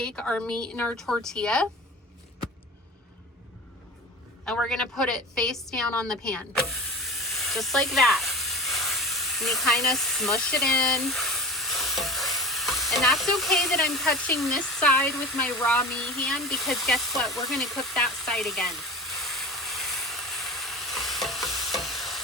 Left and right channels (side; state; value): both; normal; correlation 0.31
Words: our meat in our tortilla and we're gonna put it face down on the pan. Just like that. And you kind of smush it in. And that's okay that I'm touching this side with my raw meat hand because guess what? We're gonna cook that side again.